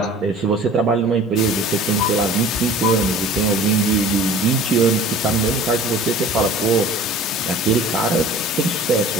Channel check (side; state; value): both; normal; correlation 0.44